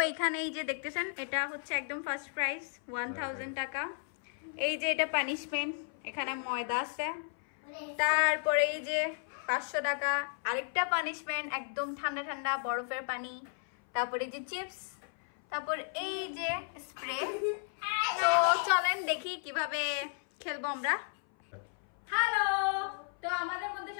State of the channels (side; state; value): right; silent; 55 dB below the other